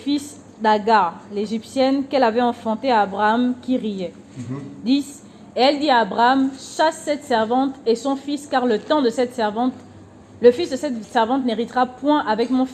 d'Agar, l'Égyptienne, qu'elle avait enfanté à Abraham, qui riait. 10. Et elle dit à Abraham, chasse cette servante et son fils, car le temps de cette servante, le fils de cette servante n'héritera point avec mon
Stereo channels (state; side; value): identical; both; correlation 1.00